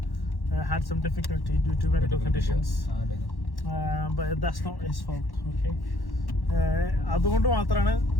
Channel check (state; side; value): late; right; 1.1 ms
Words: had some difficulty due to medical conditions, but that's not his fault. Okay, അതുകൊണ്ട് മാത്രമാണ്.